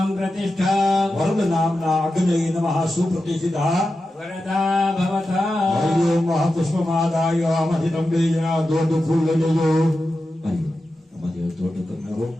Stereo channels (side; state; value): both; normal; correlation 0.91